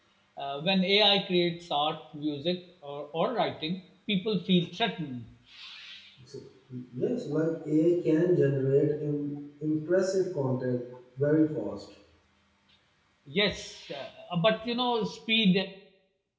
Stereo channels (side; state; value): both; identical; correlation 1.00